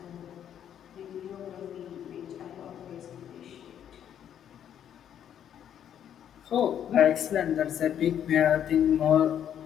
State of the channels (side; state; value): right; quieter; 9.6 dB